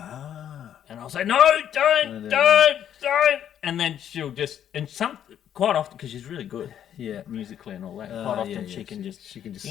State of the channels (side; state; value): right; quieter; 9.9 dB